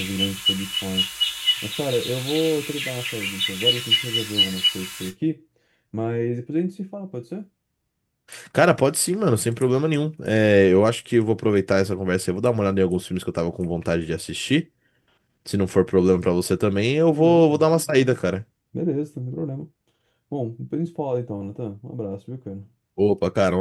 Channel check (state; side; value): identical; both; correlation 1.00